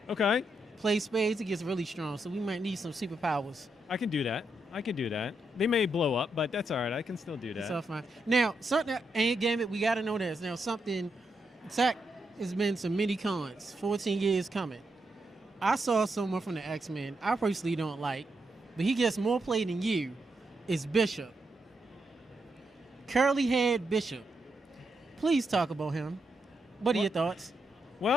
Okay. Play spades. It gets really strong. So we might need some superpowers. I can do that. They may blow up, but that's all right. I can still do that. That's all fine. Now, something, and Gambit, we got to know this. Now, Zach has been to many cons, 14 years coming. I saw someone from the X-Men I personally don't like, but he gets more play than you, is Bishop. Curly Head Bishop. Please talk about him. What are your thoughts?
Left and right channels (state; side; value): normal; both; correlation 0.82